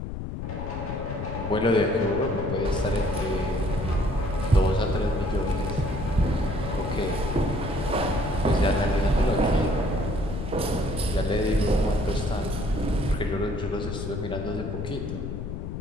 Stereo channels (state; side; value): noise; left; rumble, 6 dB below the sound